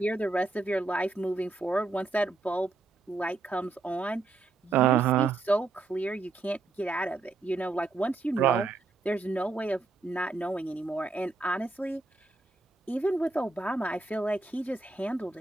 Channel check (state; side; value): quieter; left; 3.6 dB